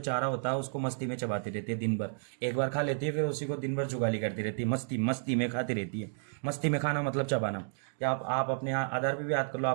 होता है उसको मस्ती में चबाती रहती है दिन भर। एक बार खा लेती है, फिर उसी को दिन भर जुगाली करती रहती है, मस्ती मस्ती में खाती रहती है। मस्ती में खाना मतलब चबाना। या आप अपने आधार पे भी याद कर लो,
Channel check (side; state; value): left; silent; digital silence